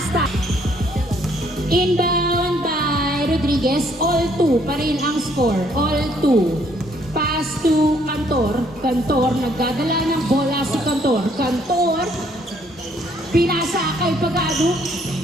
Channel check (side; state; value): both; normal; correlation 0.66